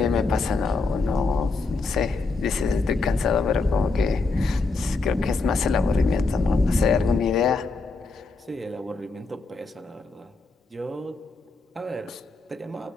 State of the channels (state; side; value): quieter; right; 3.8 dB